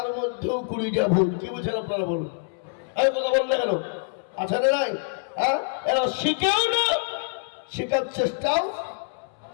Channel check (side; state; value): right; silent; 61 dB below the other